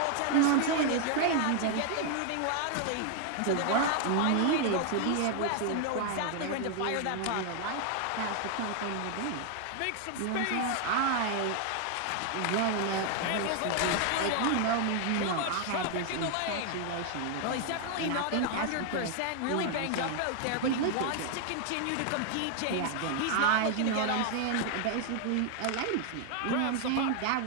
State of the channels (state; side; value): different; both; correlation 0.00